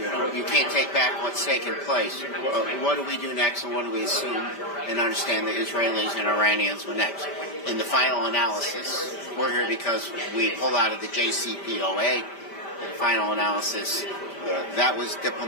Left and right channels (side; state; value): right; late; 5.1 ms